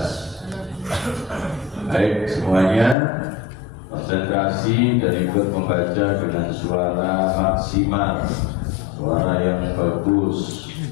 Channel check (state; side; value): drops out; right; at 3.0 s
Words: Baik semuanya, konsentrasi dan ikut membaca dengan suara maksimal, suara yang bagus